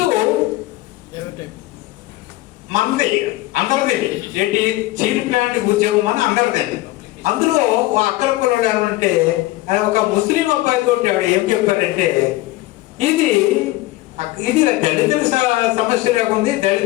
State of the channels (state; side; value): quieter; right; 18.4 dB